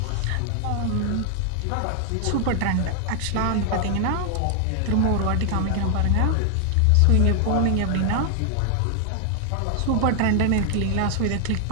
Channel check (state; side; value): different; both; correlation 0.00